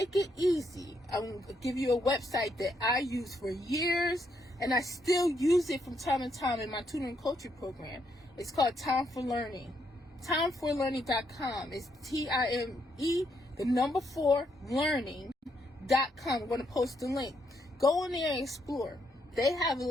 it easy, I'm going to give you a website that I use for years, and I still use it from time to time in my tutoring coaching program. It's called Time for Learning. Timeforlearning.com. It's TIME, the number 4, learning.com. I'm going to post the link. Go in there and explore. They have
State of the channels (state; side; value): normal; both; correlation 0.76